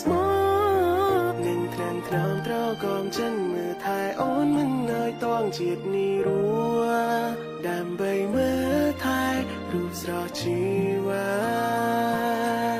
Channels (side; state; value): both; identical; correlation 1.00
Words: ស្មោះនឹងត្រាំត្រង់ត្រកមចិនមើលថែអូនមិនឲ្យតងជាតិនេះរួដើម្បីមើលថែរូបស្រស់ជីវា